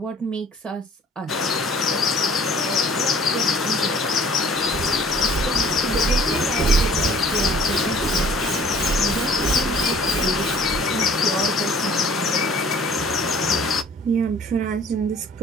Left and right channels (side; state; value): both; normal; correlation 0.51